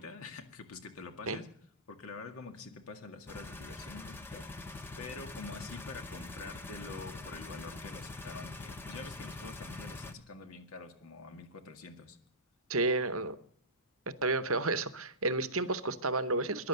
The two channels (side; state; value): both; normal; correlation -0.19